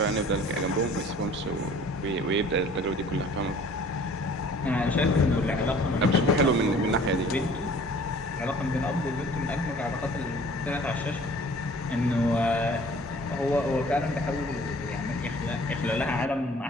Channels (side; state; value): both; normal; correlation 0.50